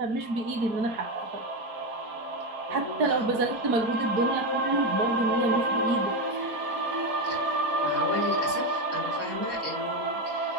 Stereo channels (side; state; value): left; late; 4.2 ms